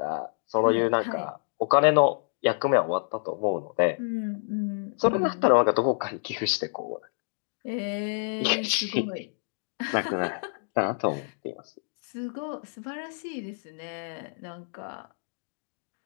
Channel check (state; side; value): silent; right; digital silence